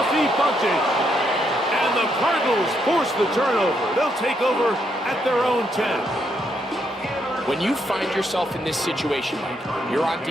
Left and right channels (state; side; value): normal; both; correlation 0.77